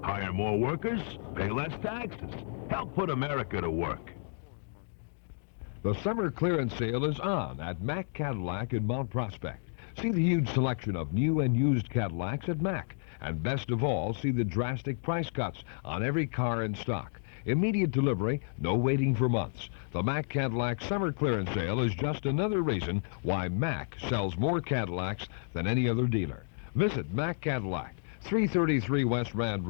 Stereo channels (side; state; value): right; silent; digital silence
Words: Hire more workers, pay less taxes. Help put America to work. The summer clearance sale is on at Mack Cadillac in Mount Prospect. See the huge selection of new and used Cadillacs at Mack. And best of all, see the drastic price cuts on every car in stock. Immediate delivery, no waiting for months. The Mack Cadillac Summer Clearance Sale is just another reason why Mack sells more Cadillacs than any other dealer. Visit Mack Cadillac, 333 West Rand